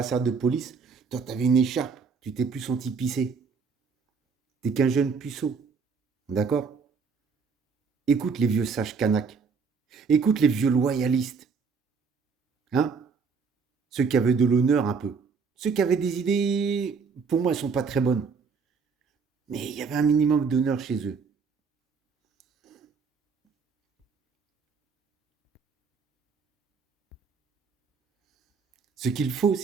de police. Toi, t'avais une écharpe. Tu t'es plus senti pisser. T'es qu'un jeune puceau. D'accord? Écoute les vieux sages Kanak. Écoute les vieux loyalistes. Hein? Ceux qui avaient de l'honneur un peu. Ceux qui avaient des idées, pour moi, elles sont pas très bonnes. Mais il y avait un minimum d'honneur chez eux. Ce qu'il faut,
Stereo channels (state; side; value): quieter; left; 5.3 dB